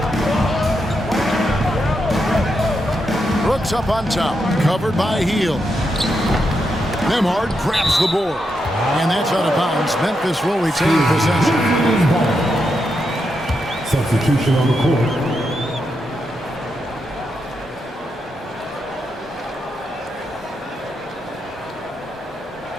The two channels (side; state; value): both; normal; correlation 0.84